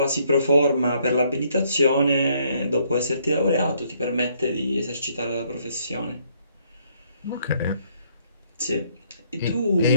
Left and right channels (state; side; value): inverted; both; correlation -0.68